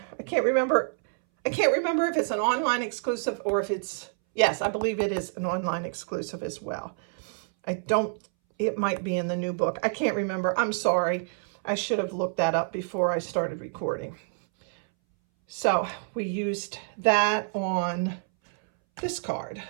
I can't remember if it's an online exclusive or if it's, yes, I believe it is an online exclusive as well. It might be in the new book. I can't remember. I'm sorry. I should have looked that up before I started recording. So we used that on this card.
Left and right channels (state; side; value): silent; left; 60 dB below the other